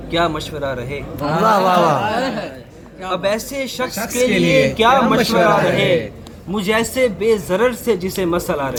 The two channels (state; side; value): identical; both; correlation 1.00